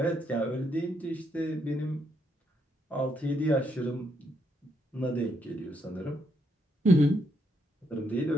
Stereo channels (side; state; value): both; normal; correlation 0.76